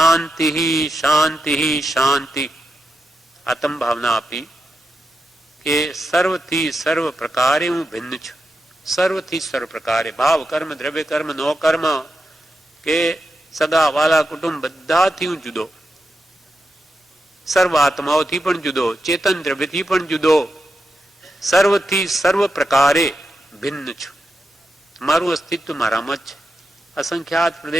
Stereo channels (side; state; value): both; normal; correlation 0.87